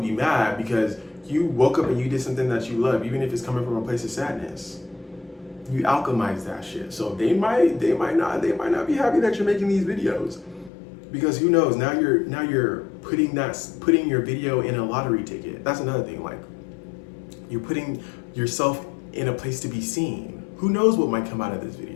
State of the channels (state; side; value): drops out; right; at 10.7 s